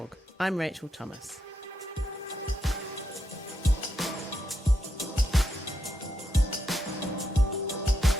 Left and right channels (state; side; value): normal; both; correlation 0.82